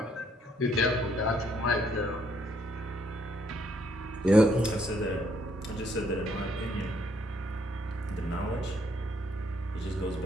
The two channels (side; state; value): both; normal; correlation 0.70